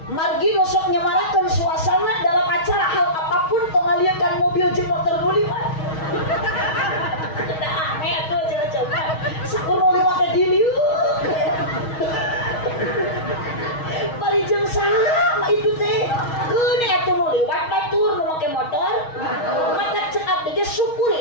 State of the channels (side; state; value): right; late; 6.3 ms